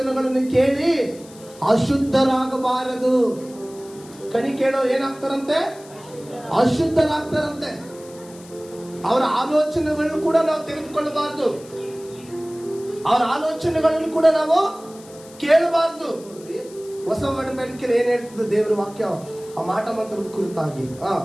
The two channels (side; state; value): left; noise; hiss, 22 dB below the sound